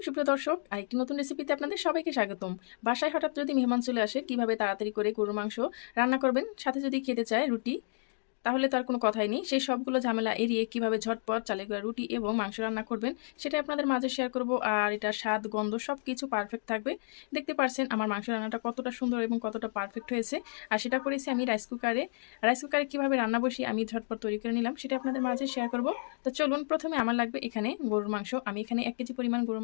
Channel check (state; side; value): silent; right; digital silence